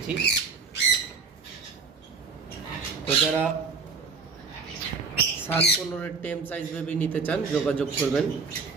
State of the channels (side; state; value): left; quieter; 4.9 dB